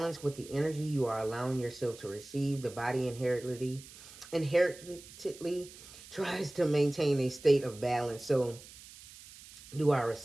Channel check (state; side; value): noise; right; hiss, 18 dB below the sound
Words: with the energy you are allowing yourself to receive. The body inherently tries to maintain a state of balance. So do our